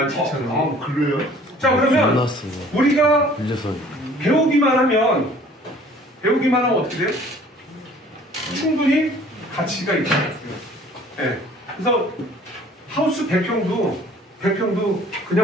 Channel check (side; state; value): both; normal; correlation 0.53